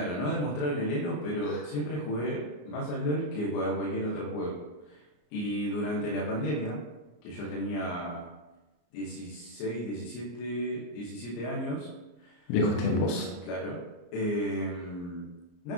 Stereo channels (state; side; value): late; right; 34 ms